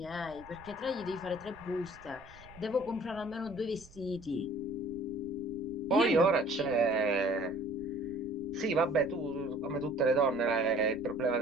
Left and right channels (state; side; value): noise; right; rumble, 22 dB below the sound